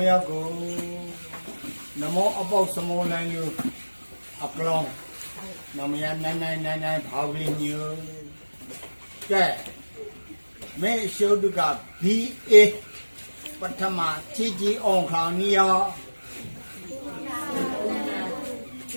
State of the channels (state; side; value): inverted; both; correlation -1.00